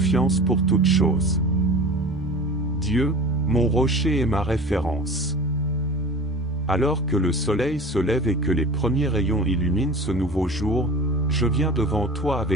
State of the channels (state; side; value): normal; both; correlation 0.37